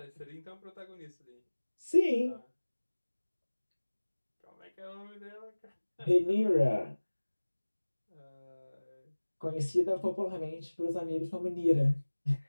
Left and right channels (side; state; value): both; inverted; correlation -1.00